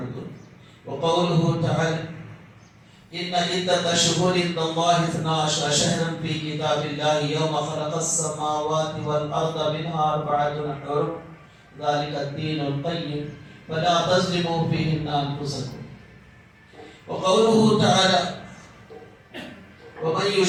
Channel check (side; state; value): both; identical; correlation 1.00